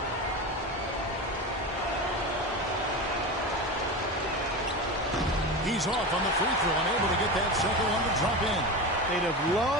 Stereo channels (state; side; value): normal; both; correlation 0.24